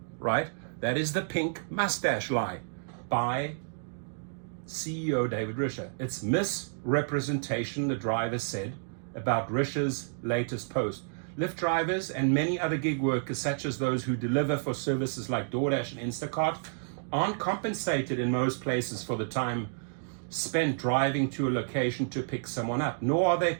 right? That is the pink mustache lie by CEO David Risher. It's misrepresentation, the driver said, about Risher's latest post. Lyft drivers and many other gig workers, such as those who deliver for services like DoorDash and Instacart, aren't compensated in most places for the time spent driving to a location to pick someone up, nor are they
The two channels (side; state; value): left; silent; digital silence